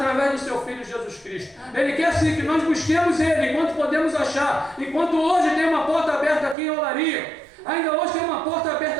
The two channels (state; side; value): drops out; left; at 6.6 s